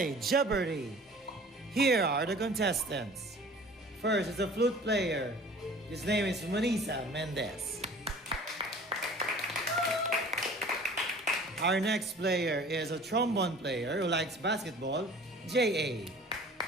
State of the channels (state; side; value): normal; both; correlation 0.46